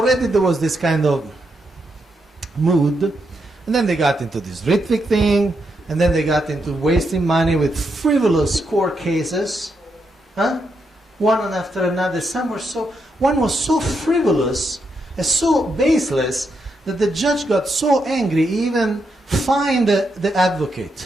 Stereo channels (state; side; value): normal; both; correlation 0.82